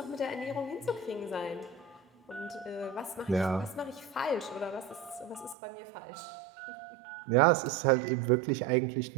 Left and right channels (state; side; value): drops out; left; at 5.6 s